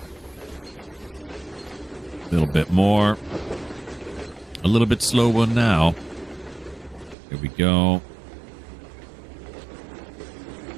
A little bit more. A little bit slower now. Here we go.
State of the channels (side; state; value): left; drops out; at 7.2 s